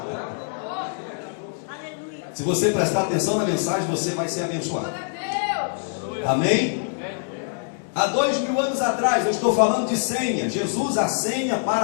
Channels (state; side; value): silent; right; 62 dB below the other